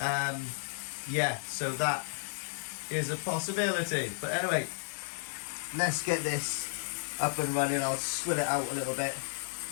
Yeah, so that is a possibility. But anyway, let's get this up and running. I'll swill it out a little bit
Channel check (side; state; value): right; silent; digital silence